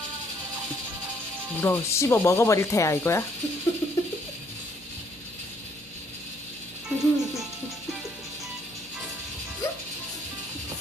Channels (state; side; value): normal; both; correlation 0.67